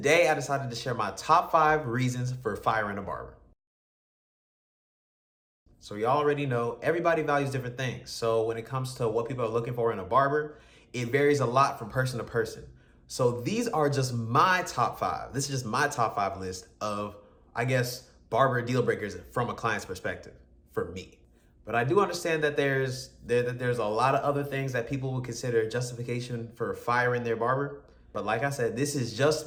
I decided to share my top 5 reasons for firing a barber. So y'all already know everybody values different things. So when it comes to what people are looking for in a barber, it varies a lot from person to person. So these are just my top 5. This is just my top 5 list of, I guess, barber deal breakers from a client's perspective for me. But I do understand that there's a lot of other things that people would consider justification for firing their barber. But like I said, this is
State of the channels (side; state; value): both; identical; correlation 1.00